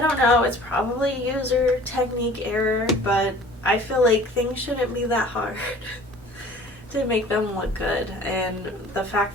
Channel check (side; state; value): both; normal; correlation 0.48